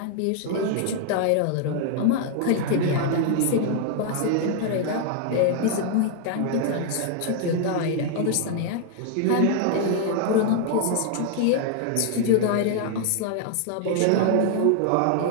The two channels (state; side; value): different; both; correlation 0.00